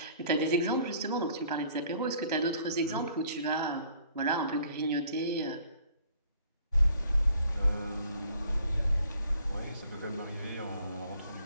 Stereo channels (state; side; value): inverted; both; correlation -0.59